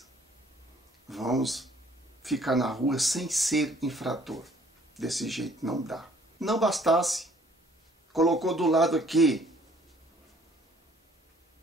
vamos ficar na rua sem ser infrator? Desse jeito não dá. Não bastasse, colocou do lado aqui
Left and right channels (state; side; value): normal; both; correlation 0.59